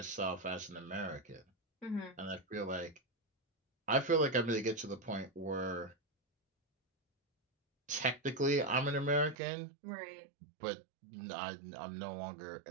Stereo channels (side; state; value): left; drops out; at 9.3 s